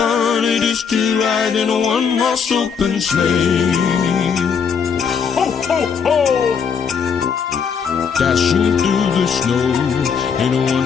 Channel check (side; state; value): right; quieter; 6.4 dB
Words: it is to ride in a one-horse open sleigh. Ho, ho, ho! Dashing through the snow in a